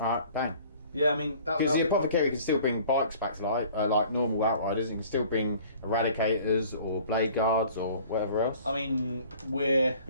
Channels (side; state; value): both; inverted; correlation -0.50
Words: bang. Yeah, I mean... Because the Apothecary can still bring bikes back to life, like normal Outriders. It can still bring Eradicators or Blade Guards or whatever else. I mean, we're